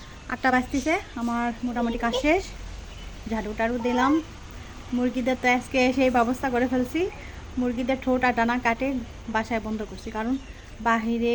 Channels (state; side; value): identical; both; correlation 1.00